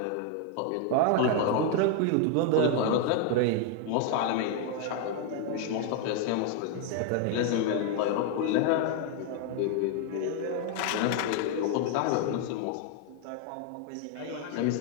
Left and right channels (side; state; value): both; different; correlation 0.01